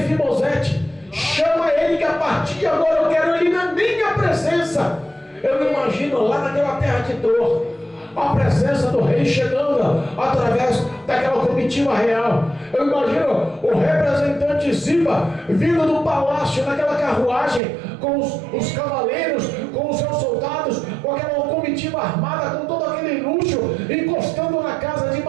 Chama ele, que a partir de agora eu quero ele na minha presença. Eu imagino lá naquela terra de dor a presença do rei chegando através daquela comitiva real. Eu imagino o representante Ziba vindo do palácio naquela carruagem com os cavaleiros, com os seus soldados, com aquela comitiva armada, com todo aquele luxo, encostando na casa de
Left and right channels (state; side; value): drops out; left; at 17.6 s